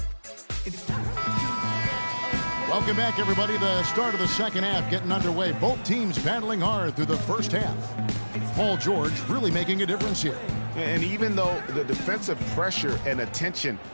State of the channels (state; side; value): inverted; both; correlation -1.00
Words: Welcome back, everybody. The start of the second half getting underway. Both teams battling hard through the first half. Paul George really making a difference here. And even though the defensive pressure and attention